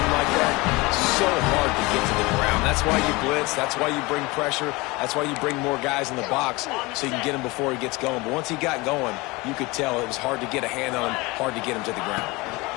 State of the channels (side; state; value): right; quieter; 23.6 dB